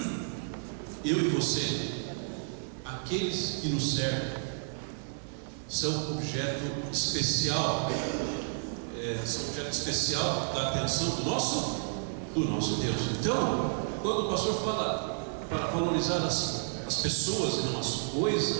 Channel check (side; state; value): left; silent; digital silence